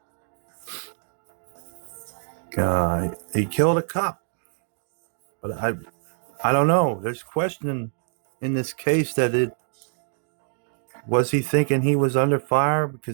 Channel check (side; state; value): left; silent; digital silence